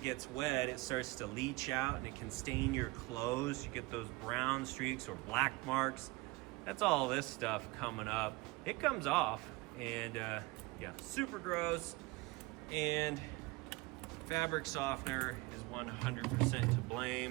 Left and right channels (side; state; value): left; quieter; 22.8 dB